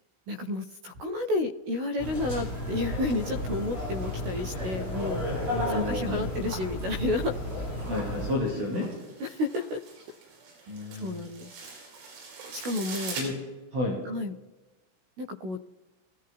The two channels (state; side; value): late; left; 16 ms